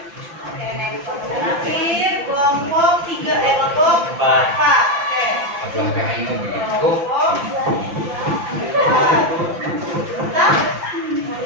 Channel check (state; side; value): late; left; 5.9 ms